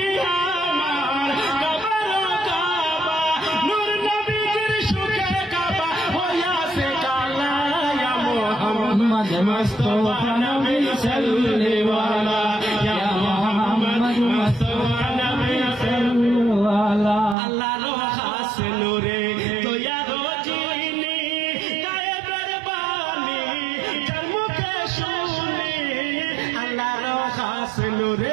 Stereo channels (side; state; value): left; drops out; at 17.4 s